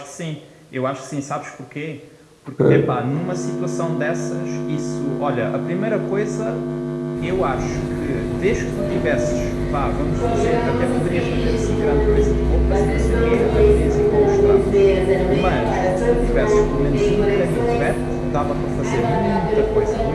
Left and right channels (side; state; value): both; identical; correlation 1.00